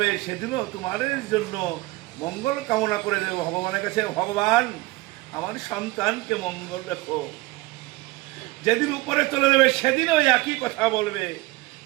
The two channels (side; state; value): left; quieter; 20.7 dB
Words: সেদিনও তোমাদের জন্য মঙ্গল কামনা করে দেব ভগবানের কাছে, ভগবান আমার সন্তানকে মঙ্গল রেখো। যেদিন উপরে চলে যাবে সেদিনও একই কথা বলবে,